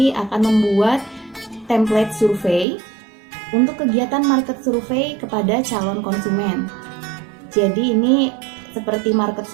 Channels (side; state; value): left; drops out; at 2.7 s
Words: akan membuat template survei untuk kegiatan market survey kepada calon konsumen. Jadi ini seperti market